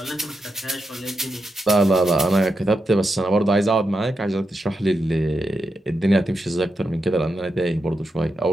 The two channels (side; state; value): both; normal; correlation 0.86